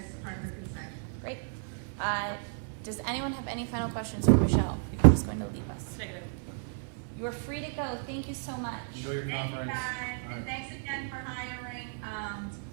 part of the consent. Great. Does anyone have any final questions for Michelle before she's going to leave us? Negative. You are free to go. Thank you so much. Enjoy your Thank you conference. guys, All right. and thanks again for hiring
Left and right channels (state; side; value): silent; left; 56 dB below the other